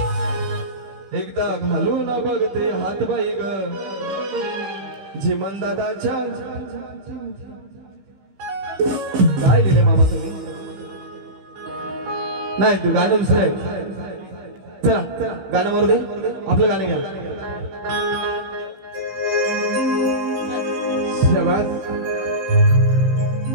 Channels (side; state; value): left; late; 16 ms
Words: एकदा घालून बघते हात बाई ग झिमन दादाच्या. काय लिहिले मामा तुम्ही? नाही गाणं दुसरं आहे. चला गाणं मारू दे. आपलं गाणं घ्या. शाबास.